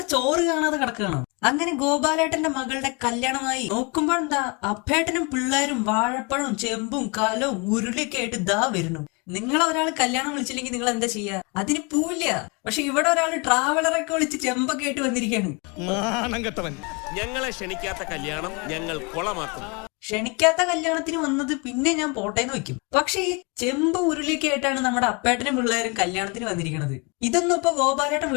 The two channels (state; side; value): quieter; right; 30.9 dB